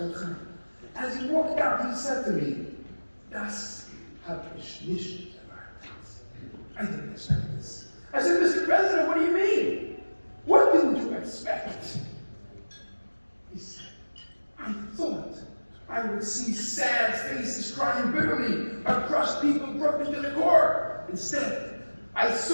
Chaim. As he walked out, he said to me, "Das hab ich nicht erwartet." I didn't expect this. I said, "Mr. President, what do you mean? What didn't you expect?" He said, "I thought I would see sad faces crying bitterly, or crushed people broken to the core. Instead, I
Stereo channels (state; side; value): inverted; both; correlation -1.00